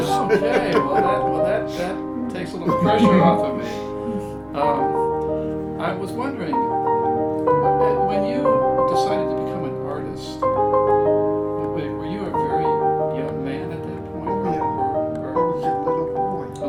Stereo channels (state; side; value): identical; both; correlation 1.00